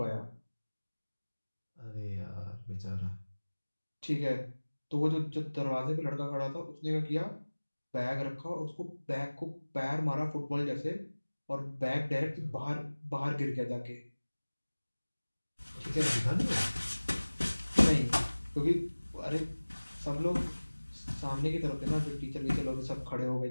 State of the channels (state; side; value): inverted; both; correlation -1.00